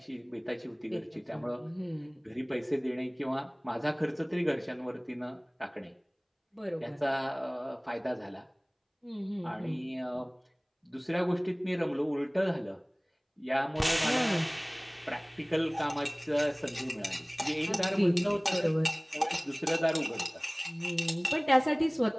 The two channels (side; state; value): both; identical; correlation 1.00